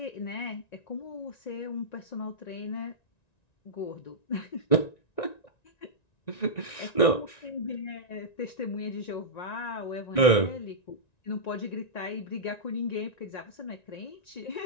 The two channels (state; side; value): late; right; 1.9 ms